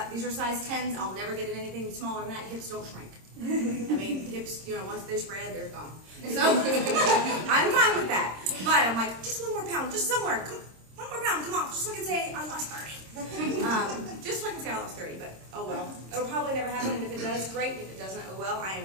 these are size 10s. I'll never get in anything smaller than that. Hips don't shrink. I mean, hips, once they're spread, they're gone. So I'm fine with that. But I'm like, just 1 more pound, just somewhere. 1 more pound, come on, just so I can say I lost 30. Just so I can say I lost 30, but oh well. It'll probably never happen, and if it does, great. If it doesn't, oh well. I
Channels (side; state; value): left; late; 26 ms